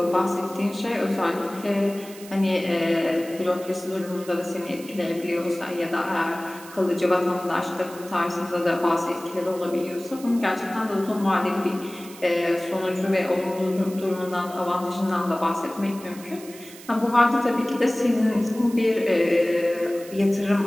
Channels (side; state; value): right; noise; hiss, 18 dB below the sound